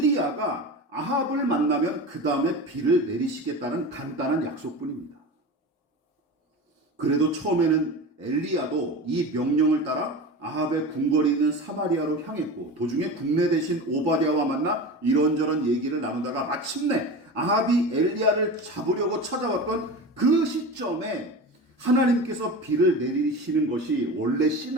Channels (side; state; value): both; normal; correlation 0.29